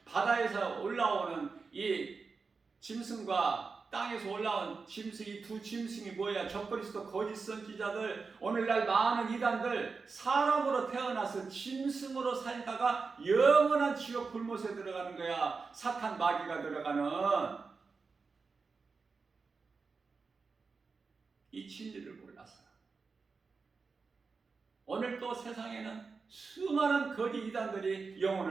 바다에서 올라오는 이 짐승과 땅에서 올라온 짐승, 이 두 짐승이 뭐야? 적그리스도 거짓 선지자들, 오늘날 많은 이단들, 사람으로 태어나서 짐승으로 살다가 영원한 지옥 불못에 들어가는 거야. 사탄 마귀가 들어가는. 이 진리를 몰라서 오늘 또 세상에는 수많은 거짓 이단들이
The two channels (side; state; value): left; quieter; 4.7 dB